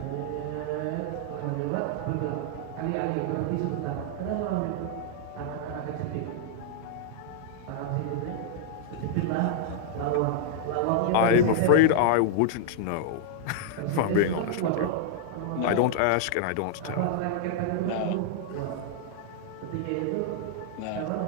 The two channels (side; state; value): both; different; correlation -0.01